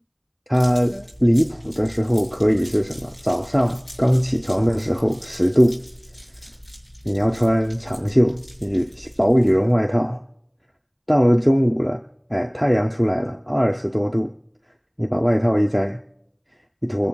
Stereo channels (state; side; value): identical; both; correlation 1.00